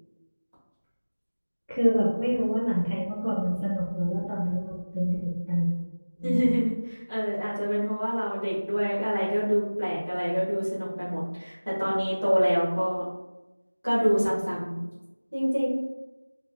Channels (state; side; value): inverted; both; correlation -1.00